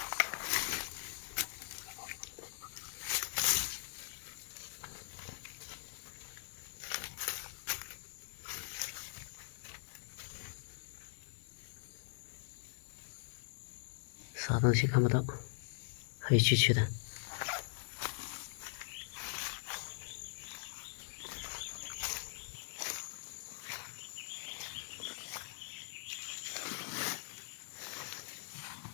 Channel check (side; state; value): right; silent; digital silence